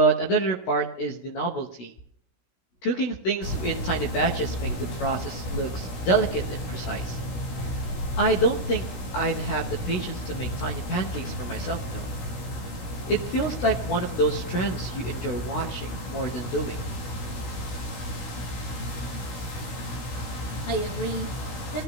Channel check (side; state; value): right; late; 17 ms